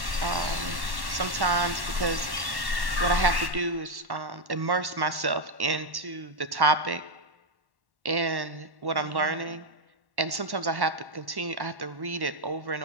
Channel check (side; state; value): left; late; 1.1 ms